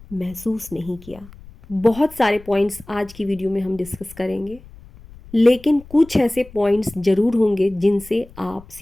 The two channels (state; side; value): noise; left; rumble, 21 dB below the sound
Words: महसूस नहीं किया। बहुत सारे पॉइंट्स आज की वीडियो में हम डिस्कस करेंगे, लेकिन कुछ ऐसे पॉइंट्स ज़रूर होंगे जिनसे आप